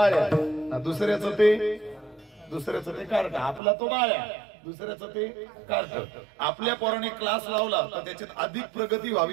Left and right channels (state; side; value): drops out; left; at 3.6 s